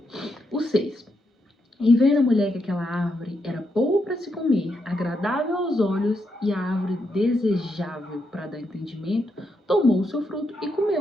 O 6. E vendo a mulher que aquela árvore era boa para se comer, agradável aos olhos e a árvore desejável para dar entendimento, tomou o seu fruto e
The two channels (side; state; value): both; normal; correlation 0.81